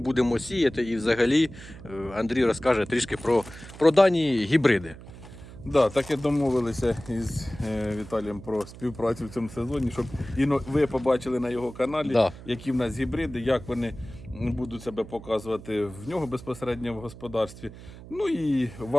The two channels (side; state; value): right; noise; hum, 16 dB below the sound